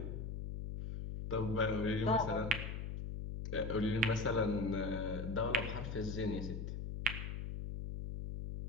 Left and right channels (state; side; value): noise; left; hum, 5 dB below the sound